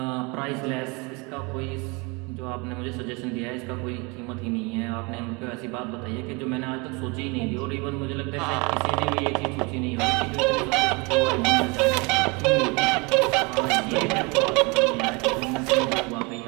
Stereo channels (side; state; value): left; quieter; 28.6 dB